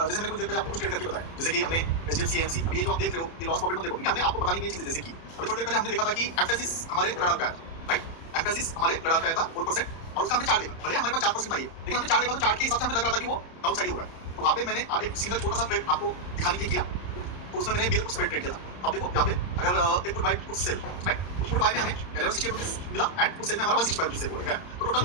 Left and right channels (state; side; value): late; right; 30 ms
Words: मैंने कुछ देर पहले आपको कुछ ट्रेड करके बताया, जैसे कि हमने एचडीएफसी एएमसी, अभी ये जो आप देख रहे हो ये लॉस प्रॉफिट मत देखो, क्योंकि हमने आपको बताने की ये चीजें जैसे कि अभी थोड़ी देर पहले हमने देखा था कि एम्फेसिस हमारे रडार पे आया, राइट। एम्फेसिस हमारे रडार पे आया था 4% और उसका हमने चार्ट देखा, भले हमारे पास 4% था ये, लेकिन हमने चार्ट देखा तो चार्ट के हिसाब से हमें लग रहा था कि वो डाउन साइड ही हो रहा है। तो वहाँ पे मैंने एक सिंगल छोटा सा ट्रेड आपको दिखाने के लिए किया, तो उसमें मैंने बेयर पुट स्प्रेड ट्रेड किया था। अब देखो यहाँ पे अगर एक put buy put sell, right, तो पुट बाय में हमें 1160 रुपीज मिला एंड पुट सेल में हमारा 165 रुपीज सेल हुआ है, तो